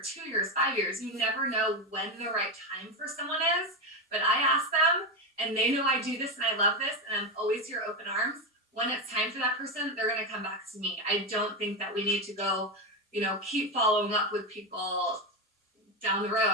2 years, 5 years. You never know when the right time for someone is. But I ask them, and they know I do this and I love this, and I'm always here open arms. When it's time for that person, they're going to come back to me. I don't think that we need to go, keep following up with people down the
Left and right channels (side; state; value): both; normal; correlation 0.12